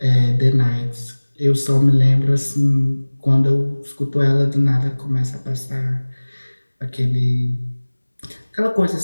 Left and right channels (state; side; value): inverted; both; correlation -1.00